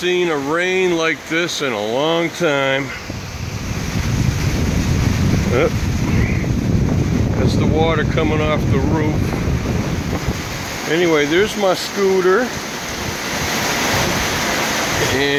a rain like this in a long time. That's the water coming off the roof. Anyway, there's my scooter.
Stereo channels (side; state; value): both; identical; correlation 1.00